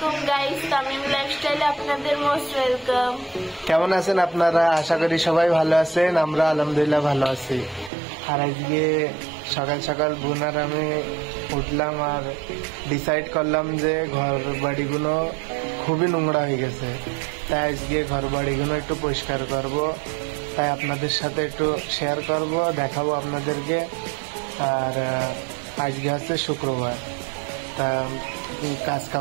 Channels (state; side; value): drops out; left; at 7.9 s